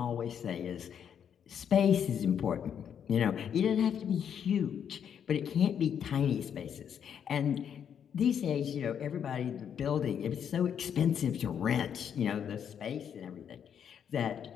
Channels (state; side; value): quieter; right; 8.3 dB